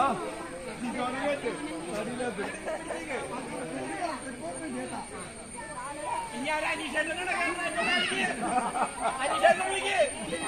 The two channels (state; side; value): identical; both; correlation 1.00